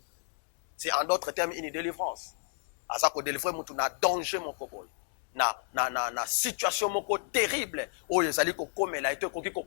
C'est en d'autres termes une délivrance. À ça qu'on délivre mon na danger mon copol. Na situation moko terrible où les alliés ko komela et ko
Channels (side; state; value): right; silent; 57 dB below the other